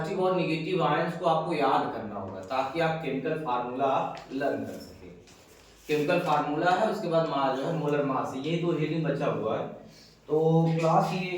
और निगेटिव आयंस को आपको याद करना होगा ताकि आप केमिकल फार्मूला लर्न कर सके। केमिकल फार्मूला है, उसके बाद मास जो है मोलर मास है, ये दो हेडिंग बचा हुआ है। तो क्लास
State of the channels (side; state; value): both; identical; correlation 1.00